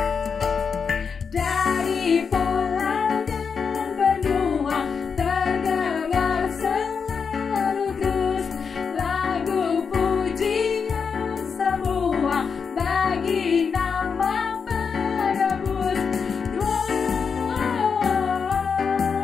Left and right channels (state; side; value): quieter; right; 5.9 dB